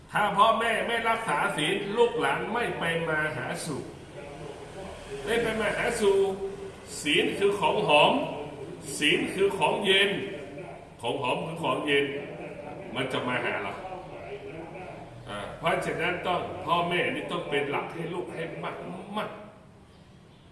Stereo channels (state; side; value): identical; both; correlation 1.00